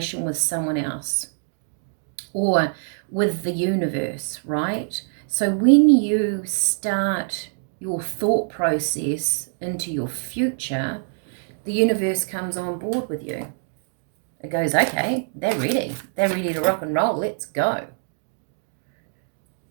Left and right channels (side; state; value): left; silent; digital silence